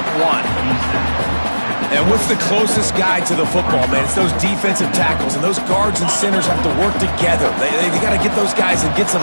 1. And what's the closest guy to the football, man? It's those defensive tackles, and those guards and centers have to work together. They got to get those guys and get some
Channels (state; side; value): inverted; both; correlation -1.00